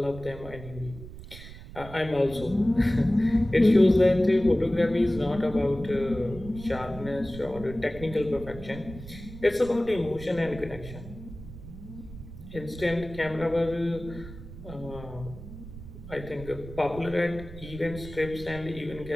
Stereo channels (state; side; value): noise; right; rumble, 14 dB below the sound